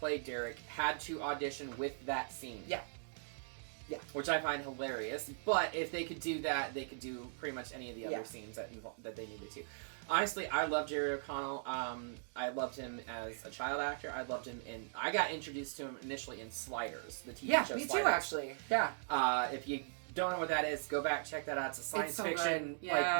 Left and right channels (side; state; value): left; silent; digital silence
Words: Derek had to audition with that scene. Yeah. Yeah. Which I find hilarious. But if they could do that, they could do pretty much any of the other scenes that they needed to. Honestly, I love Jerry O'Connell. I loved him as a child actor. I loved him I got introduced to him initially in Sliders, the TV show me Sliders. too, actually. Yeah. If you don't know what that is, go back, check that out. It's a science so fiction, good.